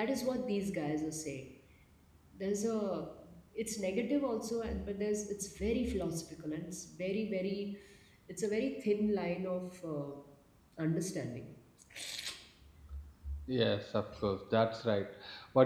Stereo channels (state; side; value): identical; both; correlation 1.00